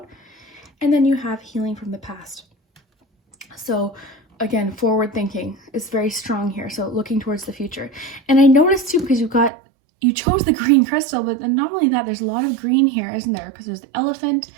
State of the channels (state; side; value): drops out; left; at 9.5 s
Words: And then you have healing from the past. So again, forward thinking is very strong here. So looking towards the future. And I noticed too, because you chose the green crystal, but then not only that, there's a lot of green here, isn't there? Because there's the elephant.